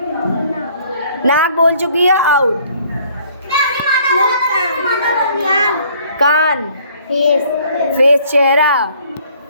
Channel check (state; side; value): inverted; both; correlation -0.59